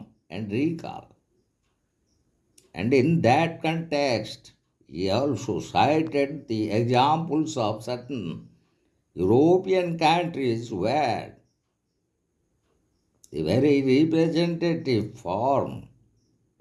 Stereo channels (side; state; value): both; identical; correlation 1.00